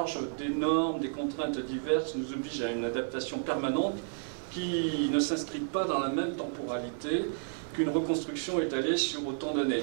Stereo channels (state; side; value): silent; left; 57 dB below the other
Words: des normes, des contraintes diverses nous oblige à une adaptation permanente qui ne s'inscrit pas dans la même temporalité qu'une reconstruction étalée sur autant d'années,